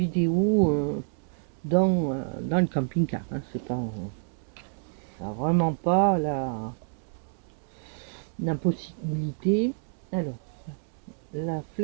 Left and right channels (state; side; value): silent; left; digital silence